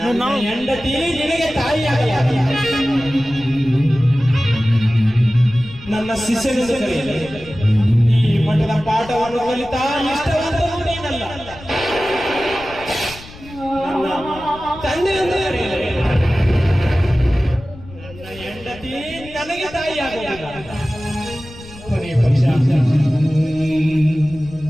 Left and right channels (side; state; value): left; noise; rumble, 18 dB below the sound